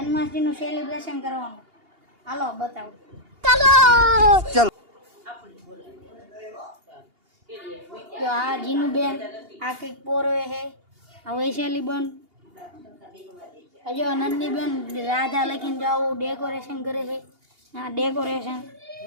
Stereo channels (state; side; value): late; left; 2.8 ms